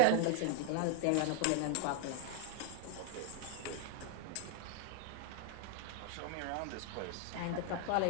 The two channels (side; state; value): both; different; correlation 0.00